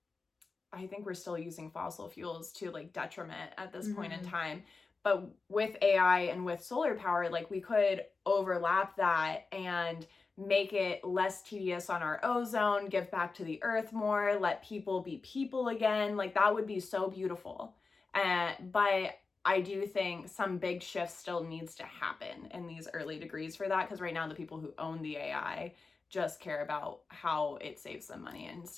I think we're still using fossil fuels to like detriment at this point in time. But with AI and with solar power, like we could overlap that and make it less tedious on our ozone, give back to the earth more, let people be people again. Like that would be so beautiful. But I do think some big shift still needs to happen in these early degrees for that, because right now the people who own the AI just care about how it saves them money and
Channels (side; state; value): right; quieter; 4.2 dB